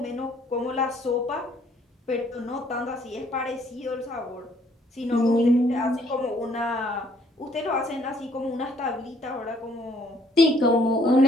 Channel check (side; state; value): both; normal; correlation 0.64